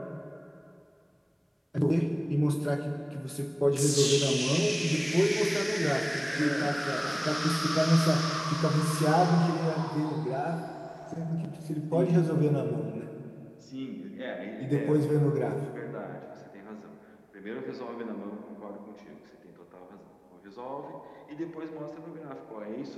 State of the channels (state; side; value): identical; both; correlation 1.00